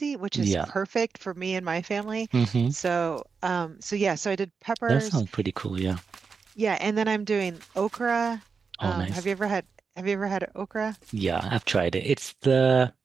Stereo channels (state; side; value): quieter; left; 5.3 dB